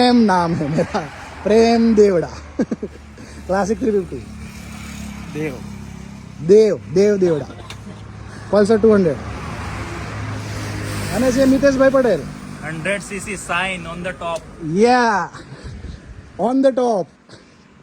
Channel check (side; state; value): both; identical; correlation 1.00